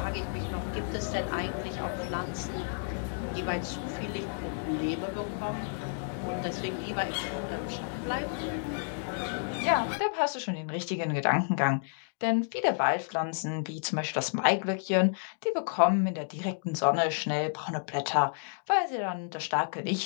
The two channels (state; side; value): silent; right; digital silence